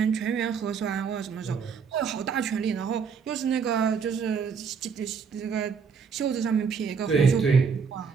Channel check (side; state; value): left; quieter; 6.0 dB